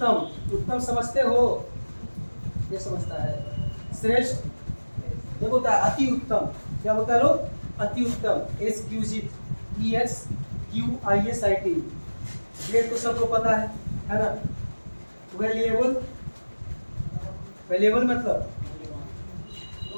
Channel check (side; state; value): both; inverted; correlation -1.00